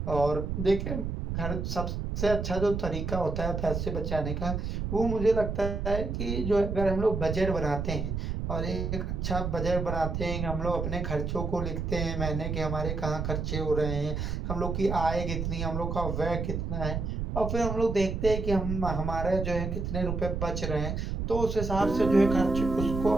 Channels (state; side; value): noise; right; rumble, 3 dB below the sound